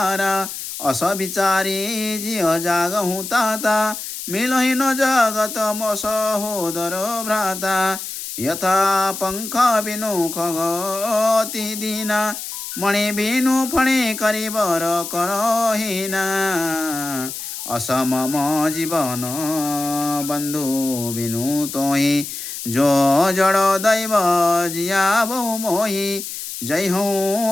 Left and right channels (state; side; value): noise; left; hiss, 8 dB below the sound